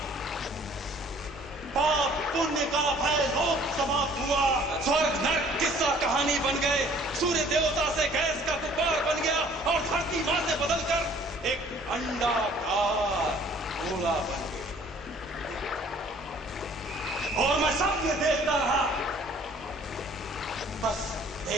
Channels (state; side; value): normal; both; correlation 0.55